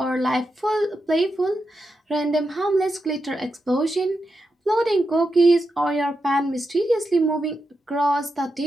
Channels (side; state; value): both; normal; correlation 0.87